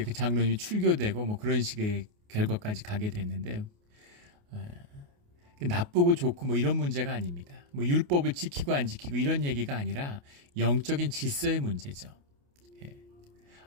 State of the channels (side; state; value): left; late; 28 ms